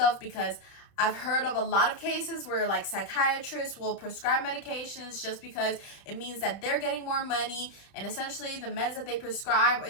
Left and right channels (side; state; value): right; late; 31 ms